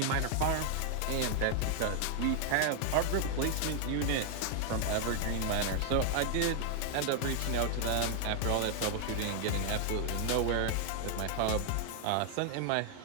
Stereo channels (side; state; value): both; different; correlation 0.00